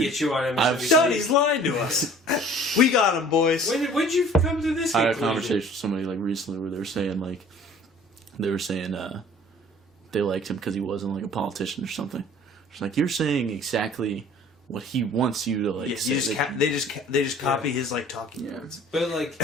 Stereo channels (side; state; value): both; normal; correlation 0.49